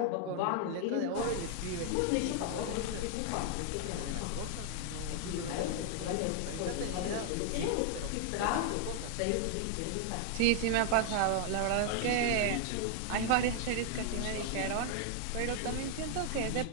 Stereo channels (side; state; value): both; different; correlation 0.00